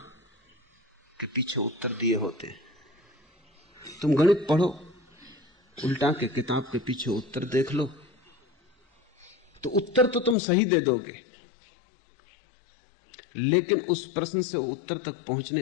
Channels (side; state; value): right; drops out; at 10.4 s